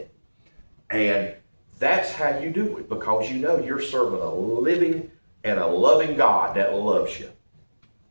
And that's how you do it, because you know you're serving a living and a loving God that loves you.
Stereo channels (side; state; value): both; inverted; correlation -1.00